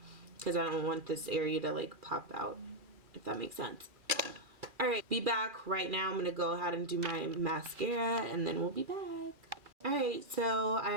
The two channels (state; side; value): late; left; 2.4 ms